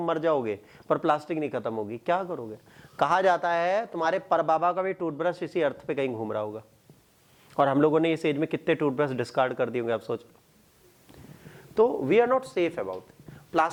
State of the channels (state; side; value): identical; both; correlation 1.00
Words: मर जाओगे, पर प्लास्टिक नहीं खत्म होगी। क्या करोगे? कहा जाता है तुम्हारे परबाबा का भी टूथब्रश इसी अर्थ पे कहीं घूम रहा होगा, और हम लोगों ने इस एज में कितने टूथब्रश डिस्कार्ड कर दिए होंगे, आप सोच लो। तो we are not safe about